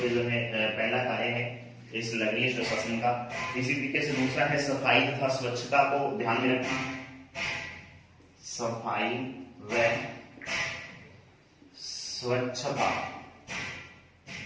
पे जो है पहला कार्य है इस नगरीय सुशासन का। इसी तरीके से दूसरा है सफाई तथा स्वच्छता को ध्यान में रखना, सफाई व स्वच्छता।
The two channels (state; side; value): identical; both; correlation 1.00